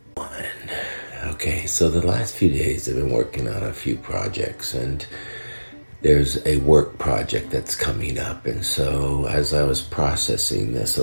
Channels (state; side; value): inverted; both; correlation -1.00